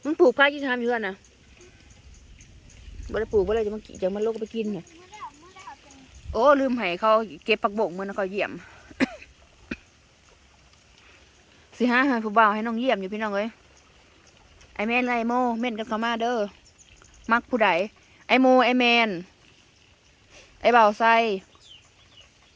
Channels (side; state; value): both; identical; correlation 1.00